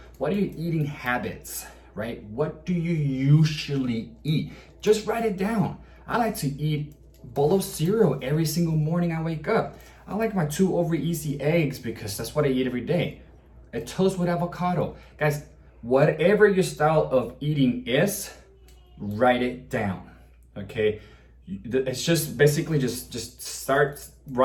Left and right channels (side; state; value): both; identical; correlation 1.00